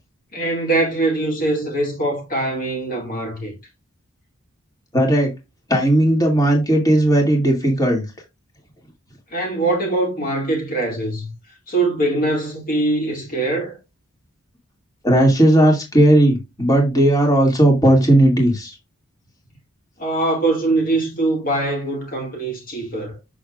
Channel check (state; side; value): normal; both; correlation 0.69